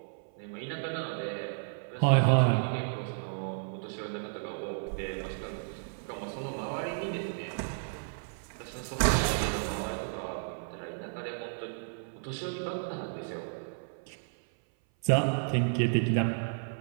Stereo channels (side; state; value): left; silent; 56 dB below the other